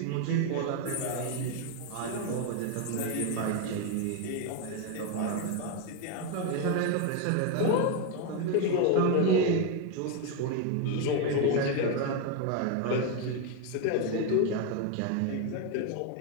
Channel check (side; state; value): both; different; correlation 0.01